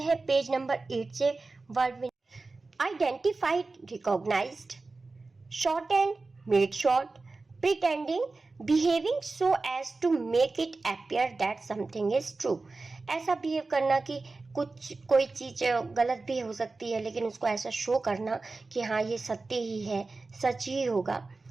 पेज नंबर 8 से। वर्ड में identified, recognised, short and made short, pretending, behaving so as to make it appear that something is true। ऐसा बिहेव करना कि कोई चीज गलत भी हो सकती है, लेकिन उसको ऐसा शो करना कि हाँ ये सत्य ही है, सच ही होगा।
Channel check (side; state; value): left; quieter; 3.6 dB